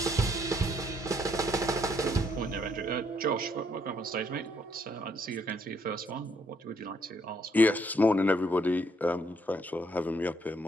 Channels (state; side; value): normal; both; correlation 0.71